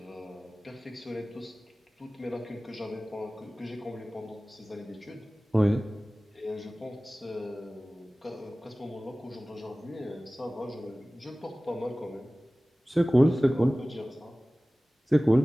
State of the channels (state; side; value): normal; both; correlation 0.98